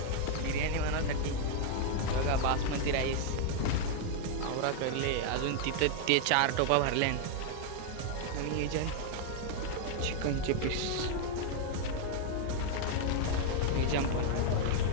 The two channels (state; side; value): different; both; correlation 0.00